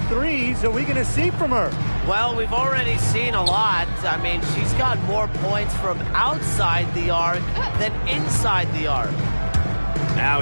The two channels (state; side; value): inverted; both; correlation -1.00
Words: are we going to see from her? Well, we've already seen a lot. I mean, she's got more points from outside the arc than inside the arc. Now